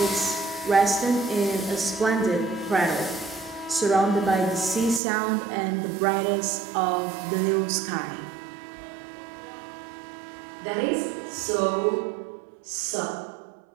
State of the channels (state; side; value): drops out; left; at 5.0 s